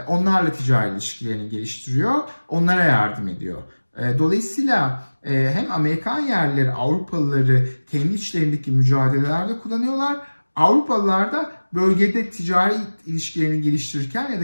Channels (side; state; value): both; inverted; correlation -1.00